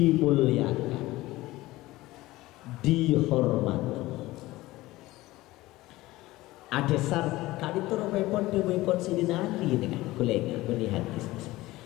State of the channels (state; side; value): quieter; right; 18.3 dB